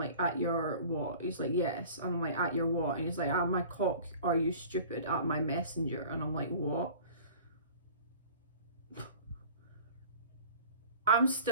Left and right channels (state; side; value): inverted; both; correlation -0.44